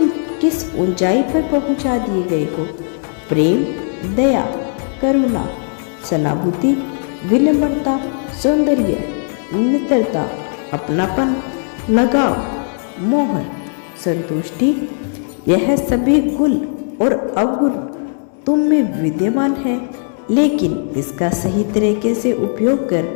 किस ऊंचाई पर पहुंचा दिए गए हो। प्रेम, दया, करुणा, सहानुभूति, विनम्रता, सौंदर्य, मित्रता, अपनापन, लगाव, मोह, संतुष्टि, यह सभी गुण और अवगुण तुम में विद्यमान है। लेकिन इसका सही तरीके से उपयोग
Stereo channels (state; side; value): silent; right; digital silence